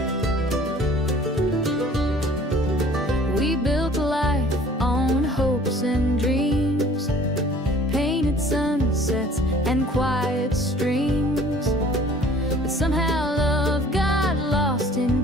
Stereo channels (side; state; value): both; normal; correlation 0.51